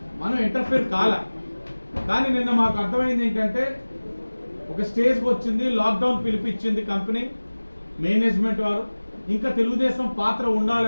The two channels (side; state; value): both; inverted; correlation -1.00